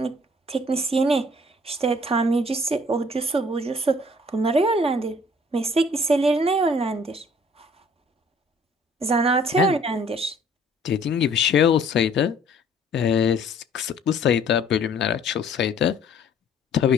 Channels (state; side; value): normal; both; correlation 0.57